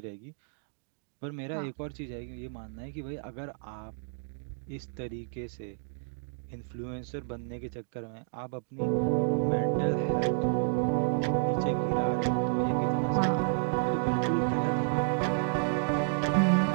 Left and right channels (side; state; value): left; silent; digital silence